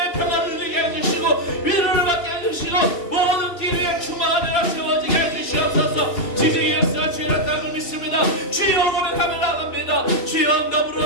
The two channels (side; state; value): right; late; 2.7 ms